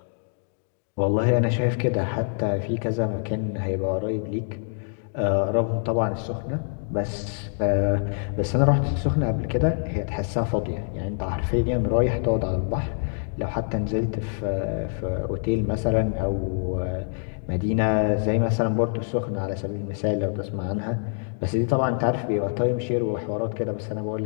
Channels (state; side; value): silent; right; digital silence